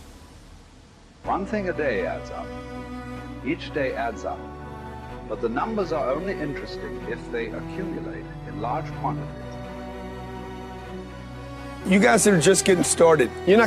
One thing a day adds up. Each day adds up. But the numbers are only interesting if they accumulate in large quantities. You guys that are just getting started, you're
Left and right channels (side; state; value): both; identical; correlation 1.00